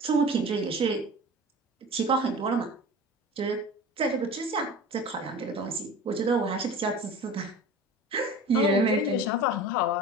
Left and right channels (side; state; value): both; normal; correlation 0.37